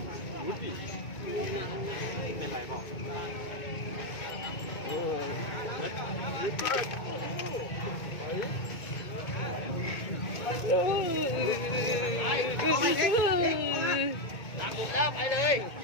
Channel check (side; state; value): right; late; 2.2 ms